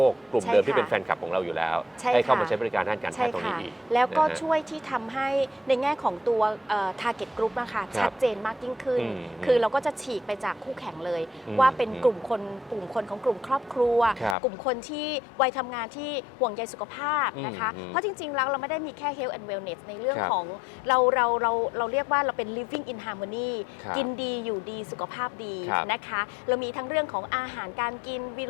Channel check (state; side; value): drops out; right; at 14.4 s